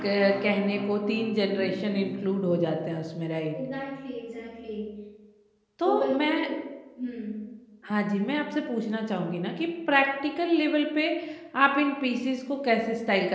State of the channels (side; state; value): both; identical; correlation 1.00